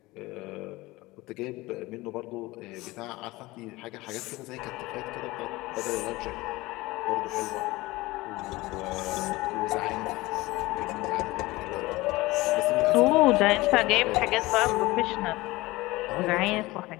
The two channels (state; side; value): quieter; right; 20.4 dB